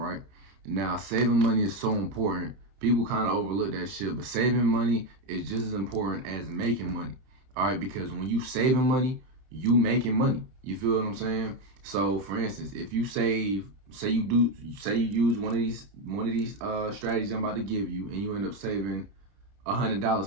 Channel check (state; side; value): late; left; 30 ms